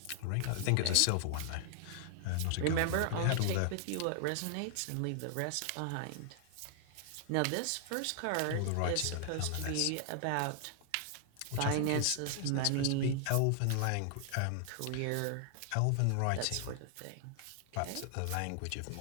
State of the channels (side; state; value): both; different; correlation -0.01